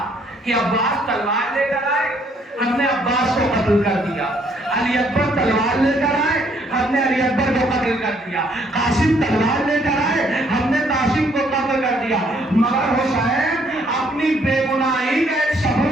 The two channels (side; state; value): both; normal; correlation 0.67